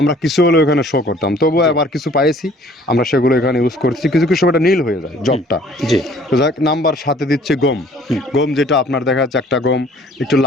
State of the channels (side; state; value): both; normal; correlation 0.55